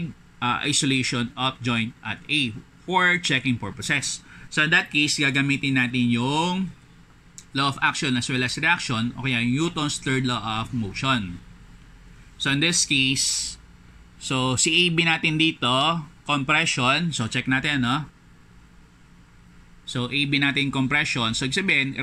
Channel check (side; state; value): both; identical; correlation 1.00